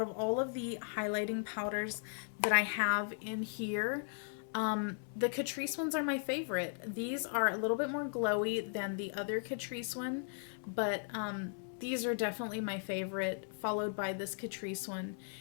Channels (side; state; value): right; silent; digital silence